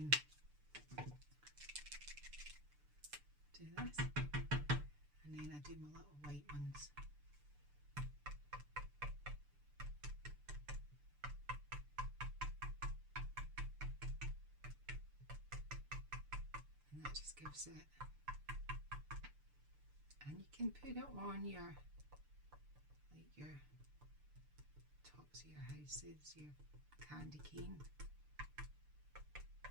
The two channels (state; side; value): late; left; 6.8 ms